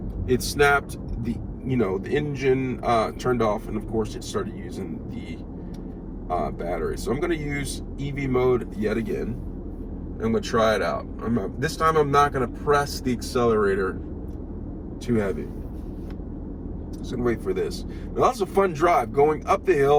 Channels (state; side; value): identical; both; correlation 1.00